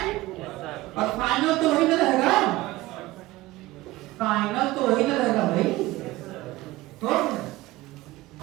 और फाइनल तो वही ना रहेगा, फाइनल तो वही ना रहेगा भाई, तो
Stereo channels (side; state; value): left; quieter; 18.5 dB